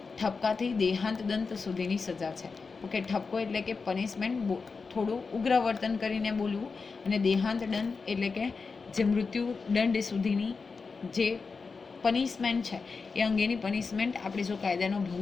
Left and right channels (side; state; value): right; quieter; 4.7 dB